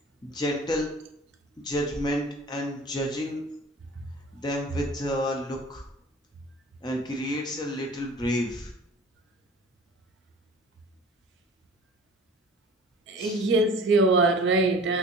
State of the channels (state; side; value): normal; both; correlation 0.44